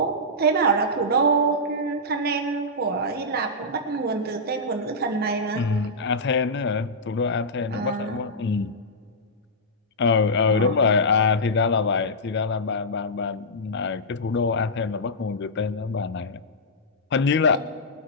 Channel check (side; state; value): both; normal; correlation -0.12